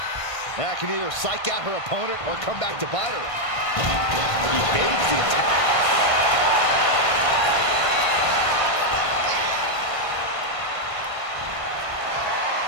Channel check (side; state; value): right; late; 1.5 ms